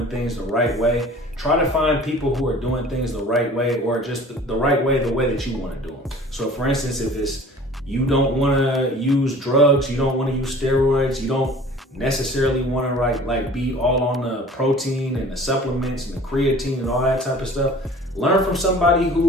things the right way. Try to find people who are doing things the right way, or just the right way, the way that you want to do them. So for instance, if it's you don't want to use drugs, you don't want to use steroids, you don't necessarily want to like be all on the protein and the supplements and the creatine and all that type of stuff, learn from somebody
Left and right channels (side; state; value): both; normal; correlation 0.46